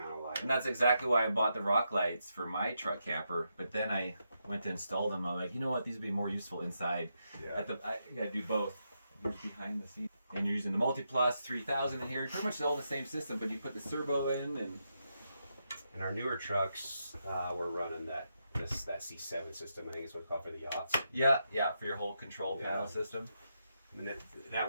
of light. And that's exactly why I bought the rock lights for my truck camper. But then I went to install them. I'm like, you know what? These would be more useful inside. Yeah. I gotta do both. Here's behind the scenes. And you're using the Multiplus 3000 in here. Pretty much all the same system, but you put the servo in. And our newer trucks, we're running that C7 system. I think is what it's called for the yachts. Yeah, for your whole control panel system. And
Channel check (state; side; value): inverted; both; correlation -0.83